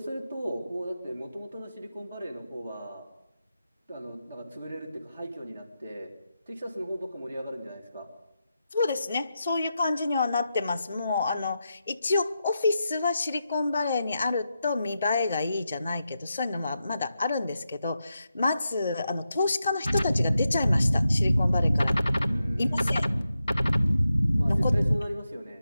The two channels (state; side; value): inverted; both; correlation -0.88